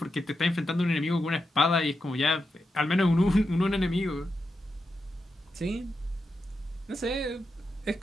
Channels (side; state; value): both; normal; correlation 0.87